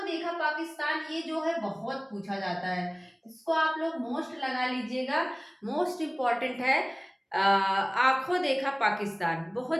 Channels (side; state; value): both; identical; correlation 1.00